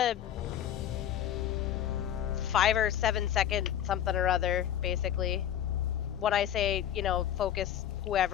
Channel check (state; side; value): quieter; right; 10.6 dB